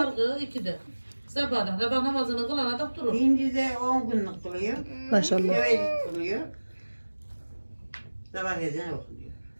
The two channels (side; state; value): both; inverted; correlation -1.00